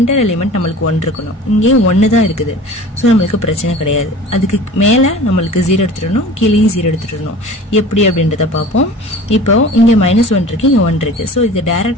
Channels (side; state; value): both; normal; correlation 0.41